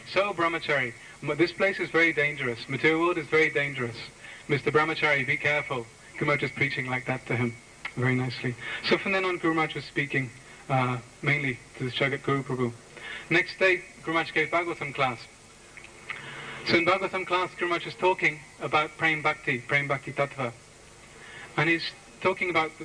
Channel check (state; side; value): identical; both; correlation 1.00